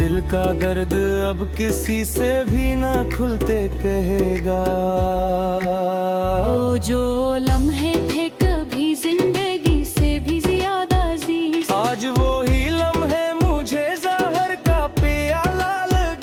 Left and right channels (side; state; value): both; identical; correlation 1.00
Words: का दर्द अब किसी से भी ना खुलते कहेगा। वो जो लम्हे थे कभी जिंदगी से भी ज्यादा अजीज, आज वो ही लम्हे मुझे जहर का प्याला